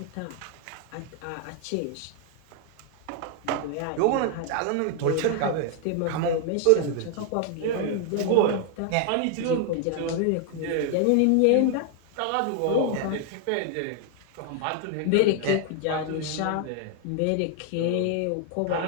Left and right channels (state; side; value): different; both; correlation 0.00